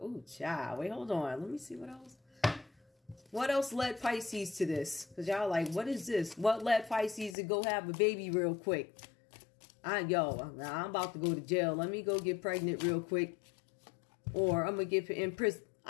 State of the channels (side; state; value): right; drops out; at 7.4 s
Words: child. Wait, hold on. Let me see what else. What else led Pisces to this? Because y'all like, what is this? What led Pisces to go have a baby real quick? I'm about to go to jail. Let me go get pregnant real quick. Or I'm going to get in prison.